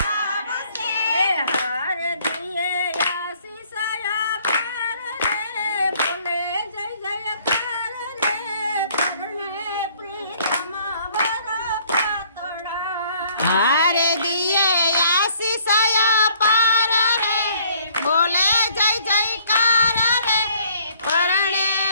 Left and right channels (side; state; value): both; inverted; correlation -0.61